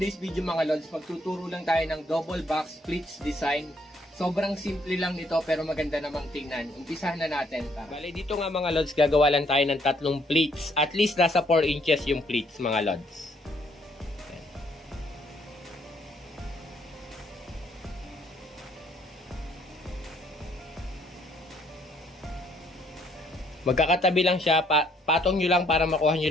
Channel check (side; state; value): both; normal; correlation 0.67